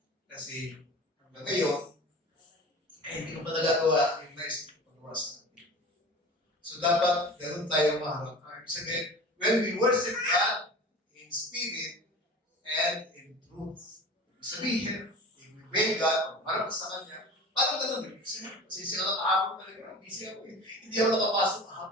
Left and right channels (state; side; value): normal; both; correlation 0.37